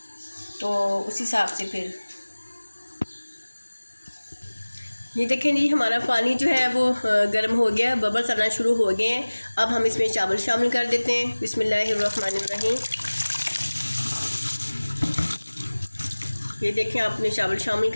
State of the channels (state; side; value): inverted; both; correlation -1.00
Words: तो उस हिसाब से फिर ये देखें जी, हमारा पानी जो है वो गर्म हो गया, बबल्स आना शुरू हो गए हैं। अब हम इसमें चावल शामिल कर देते हैं। बिस्मिल्लाहिर्रहमानिर्रहीम। ये देखें, आपने चावल शामिल